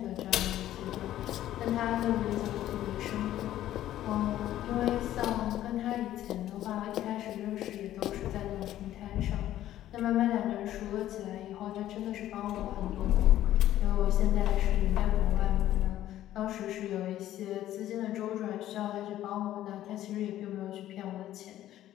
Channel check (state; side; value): quieter; right; 13.1 dB